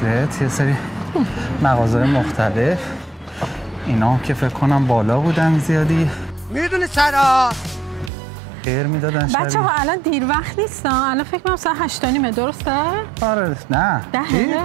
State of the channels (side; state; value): left; drops out; at 8.1 s